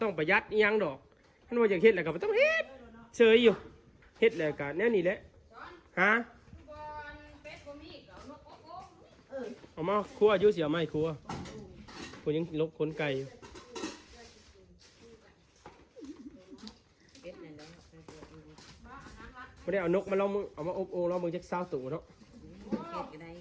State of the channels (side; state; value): both; identical; correlation 1.00